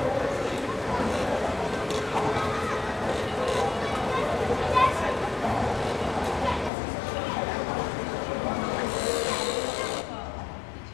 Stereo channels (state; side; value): drops out; right; at 6.7 s